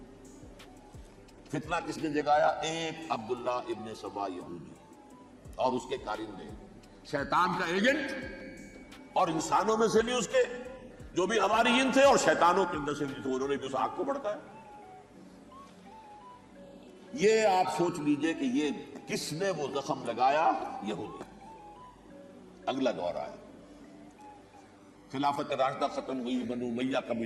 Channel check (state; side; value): identical; both; correlation 1.00